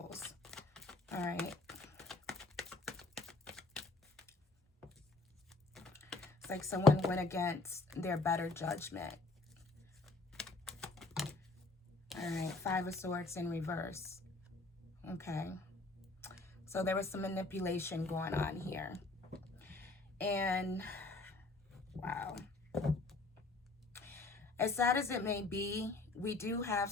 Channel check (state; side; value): quieter; right; 3.3 dB